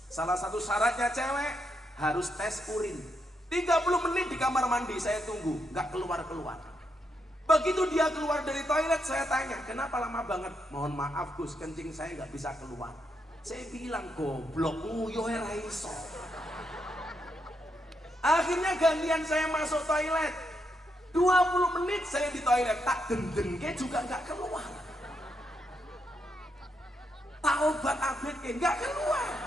Salah satu syaratnya cewek harus tes urin. 30 menit di kamar mandi saya tunggu, nggak keluar-keluar. Begitu dia keluar dari toilet, saya tanya, kenapa lama banget? Mohon maaf Gus, kencing saya nggak bisa keluar. Saya bilang, goblok, nguyo ra iso. Akhirnya gantian saya masuk toilet. 20 menit saya di toilet, tak dendengke juga nggak keluar. Tak obat abetke nggak keluar.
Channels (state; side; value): normal; both; correlation 0.80